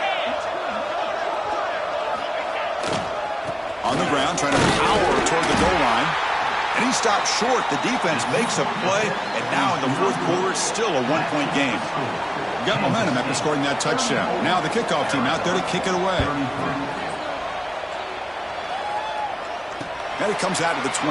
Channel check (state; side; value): identical; both; correlation 1.00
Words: On the ground, trying to power toward the goal line. And he stops short. The defense makes a play. And now in the fourth quarter, it's still a 1-point game. Got momentum after scoring that touchdown. Now the kickoff team out there to kick it away. And it comes out of the